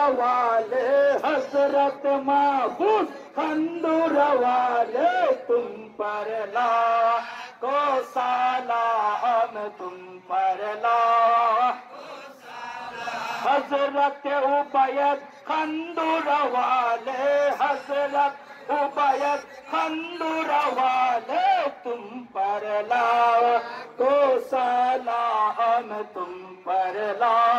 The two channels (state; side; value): identical; both; correlation 1.00